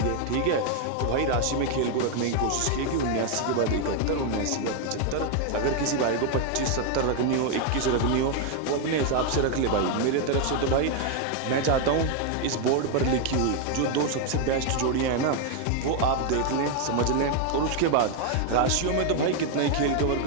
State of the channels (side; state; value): both; different; correlation 0.01